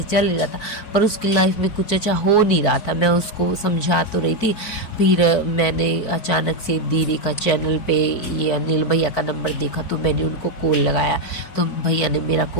चल ही रहा था, पर उसकी लाइफ में कुछ अच्छा हो नहीं रहा था। मैं उसको समझा तो रही थी। फिर मैंने अचानक से दीदी का चैनल पे ये अनिल भैया का नंबर देखा, तो मैंने उनको कॉल लगाया। तो भैया ने मेरा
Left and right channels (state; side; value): late; right; 4.5 ms